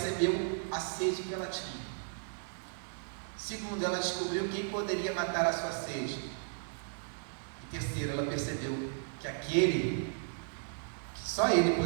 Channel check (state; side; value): silent; left; 55 dB below the other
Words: a sede que ela tinha. Segundo, ela descobriu quem poderia matar a sua sede. E terceiro, ela percebeu que aquele, que só ele